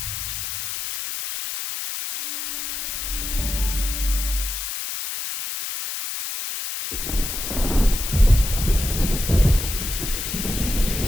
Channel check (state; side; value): noise; left; hiss, 5 dB below the sound